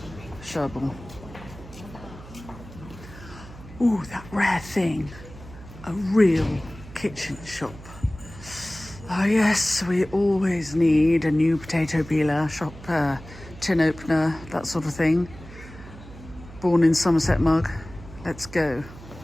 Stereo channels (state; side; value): noise; right; hum, 17 dB below the sound